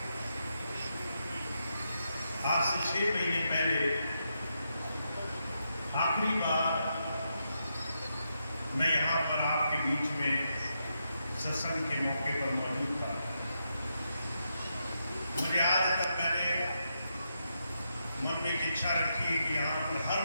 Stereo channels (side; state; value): both; inverted; correlation -0.83